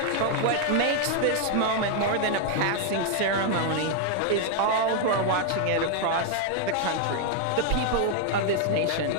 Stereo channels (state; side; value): different; both; correlation 0.00